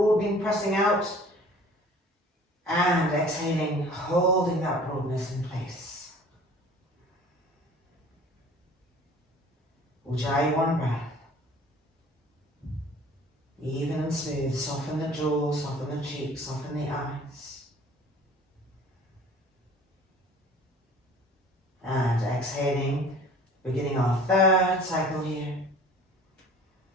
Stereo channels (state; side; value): normal; both; correlation 0.47